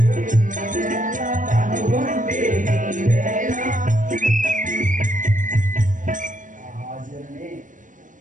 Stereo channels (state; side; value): late; left; 0.38 ms